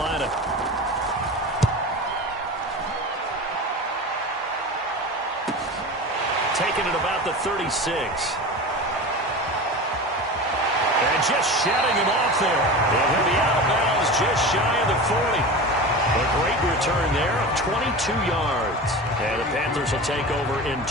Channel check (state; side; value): normal; both; correlation 0.30